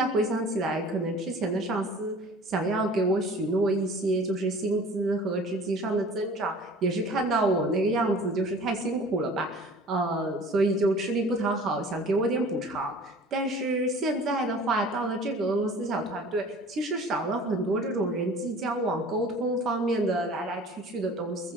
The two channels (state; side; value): normal; both; correlation 0.45